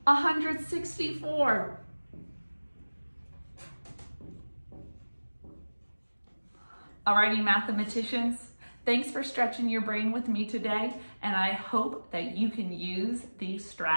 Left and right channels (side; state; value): both; inverted; correlation -1.00